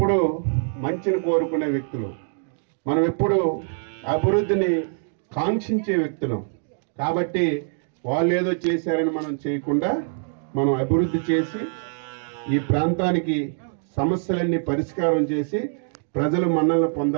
మంచిని కోరుకునే వ్యక్తులు, మనం ఎప్పుడు అభివృద్ధిని కాంక్షించే వ్యక్తులు. కాబట్టి వాళ్ళు ఏదో చేశారని మనం చేయకుండా మనం అభివృద్ధి చేసి ఈ ప్రాంతానికి సమస్యలన్నీ పరిష్కారం చేసి ప్రజలు మన్నలను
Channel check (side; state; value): left; silent; 63 dB below the other